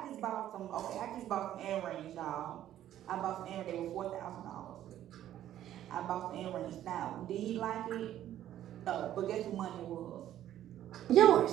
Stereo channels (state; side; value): quieter; left; 12.0 dB